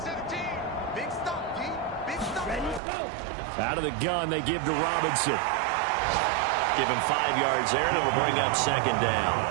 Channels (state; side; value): drops out; left; at 2.8 s